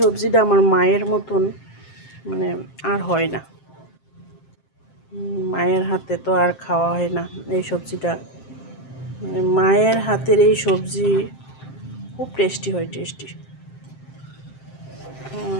আমার মায়ের মতন মানে আর হয় না, মায়ের হাতে তো আর খাওয়া হয় না এই সবজিটা। মানে মায়ের হাতের এই সবজি খুব টেস্টি হয়, টেস্টি।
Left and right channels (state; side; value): late; right; 7.6 ms